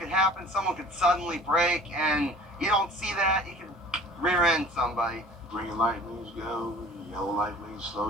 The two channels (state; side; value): normal; both; correlation 0.47